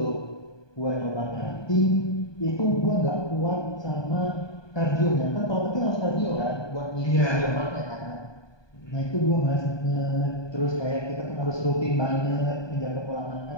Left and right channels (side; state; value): right; late; 1.2 ms